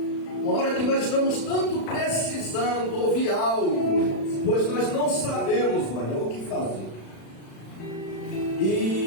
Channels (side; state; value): right; late; 36 ms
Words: uma hora que nós estamos tanto precisando ouvir algo, pois nós não sabemos, mano, o que fazer.